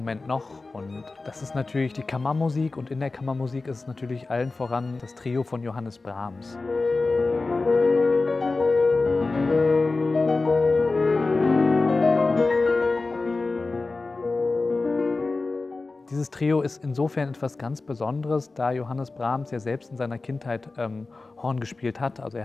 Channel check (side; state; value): right; quieter; 3.6 dB